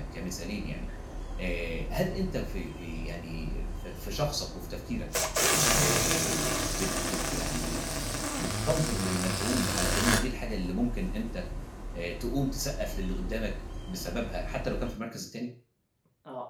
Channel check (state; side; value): identical; both; correlation 1.00